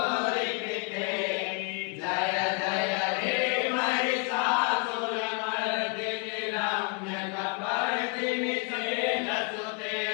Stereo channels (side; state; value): right; quieter; 32.0 dB